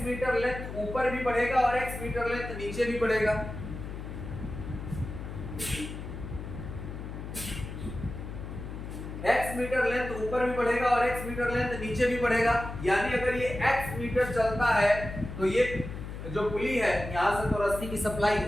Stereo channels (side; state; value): left; noise; hum, 8 dB below the sound